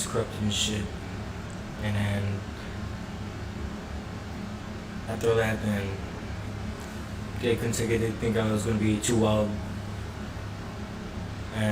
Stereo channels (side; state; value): both; identical; correlation 1.00